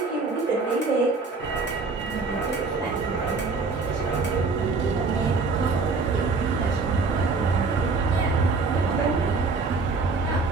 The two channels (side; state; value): left; quieter; 4.2 dB